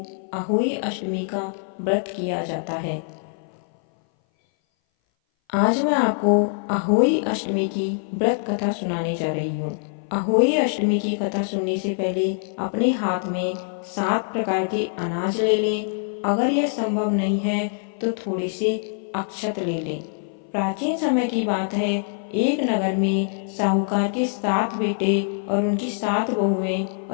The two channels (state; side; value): silent; right; 59 dB below the other